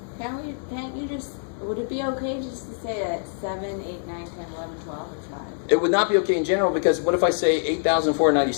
Can't you just, would it be okay just to say that 7, 8, 9, 10, 11, 12, or 5? It would not be okay in general because what if I say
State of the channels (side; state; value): right; silent; 62 dB below the other